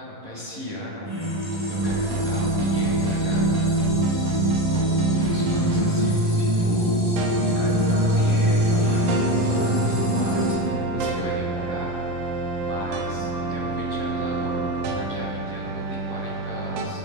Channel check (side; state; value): left; late; 11 ms